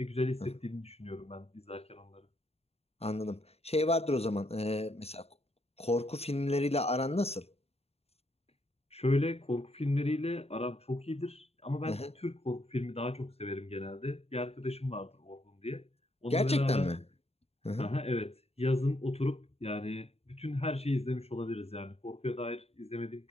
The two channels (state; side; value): late; right; 0.30 ms